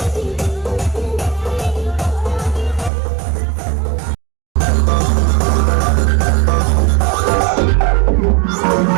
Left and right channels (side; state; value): left; drops out; at 2.9 s